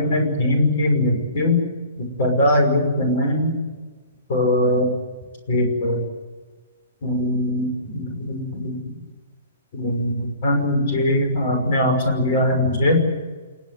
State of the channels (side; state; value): both; inverted; correlation -0.46